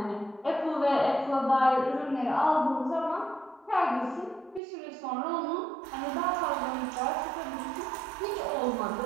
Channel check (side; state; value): left; drops out; at 4.6 s